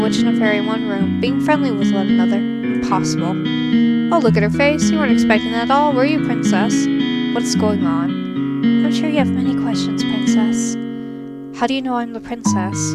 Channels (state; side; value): identical; both; correlation 1.00